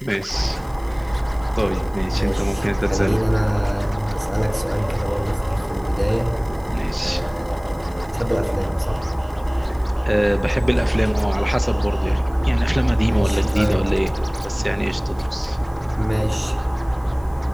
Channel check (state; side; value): noise; right; hiss, 29 dB below the sound